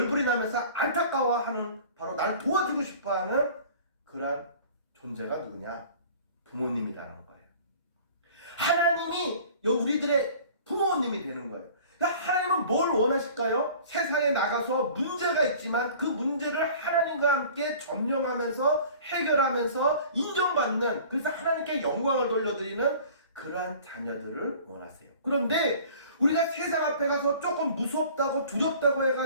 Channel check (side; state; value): both; inverted; correlation -0.46